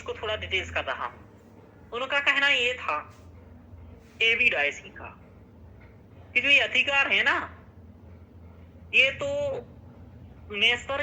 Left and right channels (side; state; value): both; identical; correlation 1.00